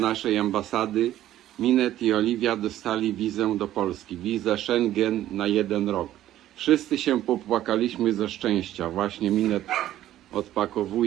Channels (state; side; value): quieter; left; 13.1 dB